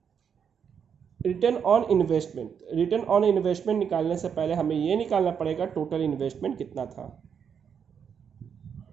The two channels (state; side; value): quieter; left; 7.4 dB